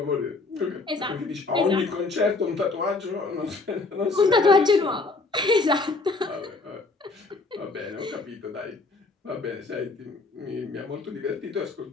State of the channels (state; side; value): quieter; right; 3.7 dB